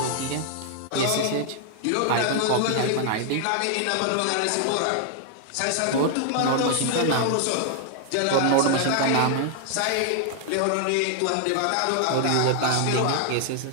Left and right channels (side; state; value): both; different; correlation 0.00